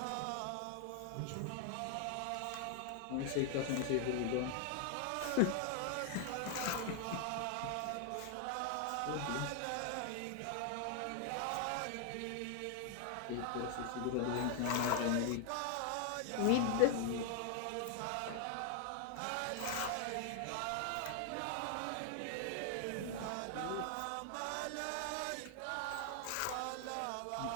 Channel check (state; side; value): different; both; correlation 0.00